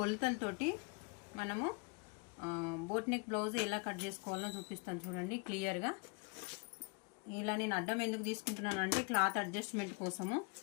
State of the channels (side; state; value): right; quieter; 33.1 dB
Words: మనము బోట్ నెక్ బ్లౌజ్ ఎలా కట్ చేసుకోవాలో చూపిస్తాను చూడండి క్లియర్గా. ఇలా నేను అడ్డం ఎందుకు తీసుకుంటున్నాను అంటే క్లాత్ అడ్జస్ట్మెంట్ కోసము.